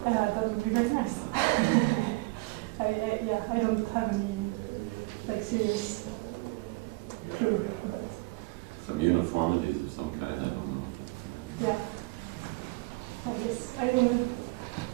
That would be very nice. I don't have any like serious clue. But Some uniformities of some kind, I don't know. yeah, I guess I don't know.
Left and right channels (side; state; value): left; quieter; 26.0 dB